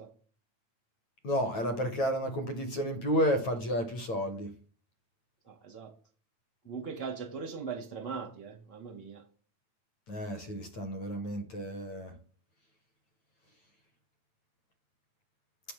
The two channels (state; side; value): late; right; 9.0 ms